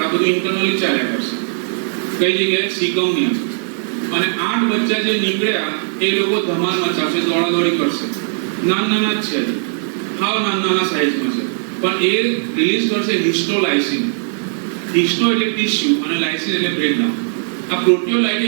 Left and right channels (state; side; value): silent; left; digital silence